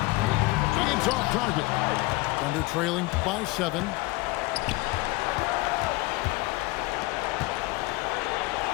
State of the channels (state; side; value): quieter; right; 21.8 dB